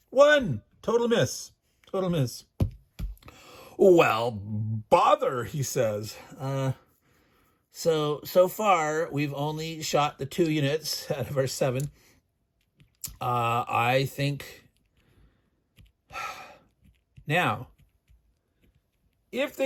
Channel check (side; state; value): both; identical; correlation 1.00